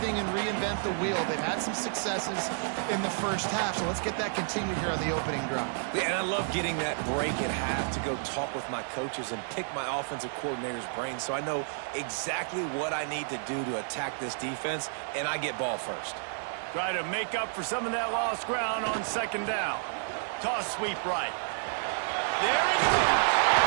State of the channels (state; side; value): silent; left; digital silence